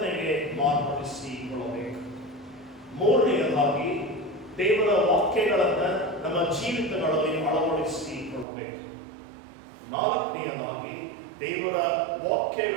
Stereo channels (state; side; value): drops out; left; at 8.5 s